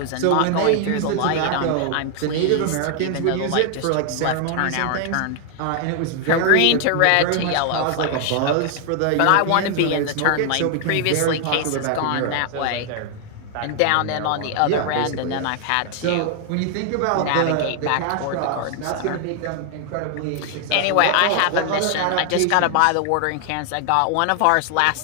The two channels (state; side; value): different; both; correlation 0.00